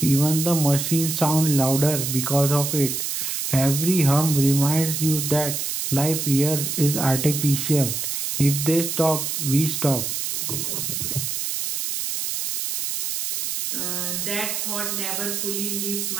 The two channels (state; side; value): noise; right; hiss, 2 dB below the sound